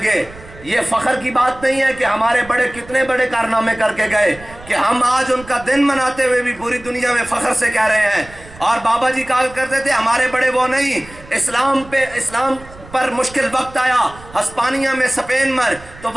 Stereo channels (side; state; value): right; noise; rumble, 20 dB below the sound